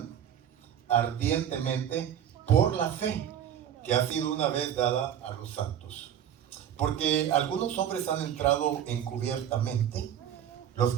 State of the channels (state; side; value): quieter; left; 9.7 dB